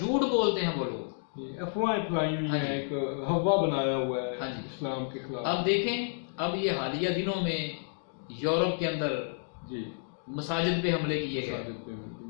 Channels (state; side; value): silent; right; digital silence